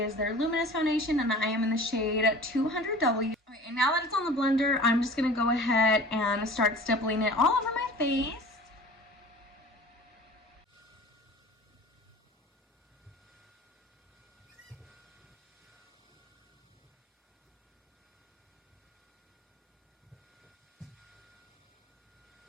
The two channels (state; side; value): normal; both; correlation 0.42